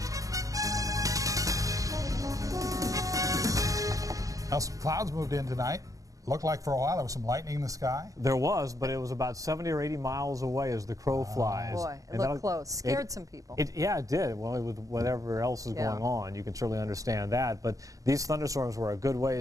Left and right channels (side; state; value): left; late; 0.16 ms